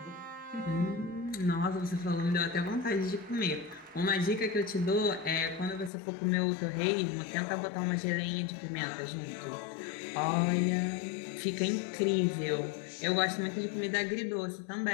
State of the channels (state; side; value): drops out; right; at 5.9 s